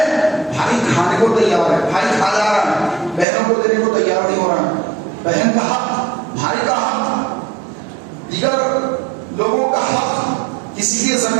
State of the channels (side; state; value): left; drops out; at 3.2 s